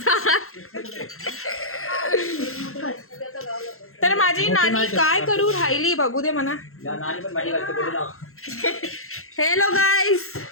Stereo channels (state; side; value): late; right; 0.62 ms